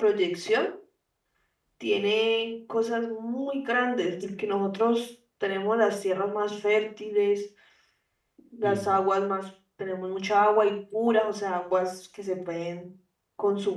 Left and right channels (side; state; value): both; identical; correlation 1.00